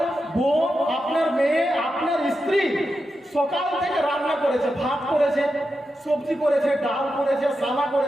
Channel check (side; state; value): both; normal; correlation 0.88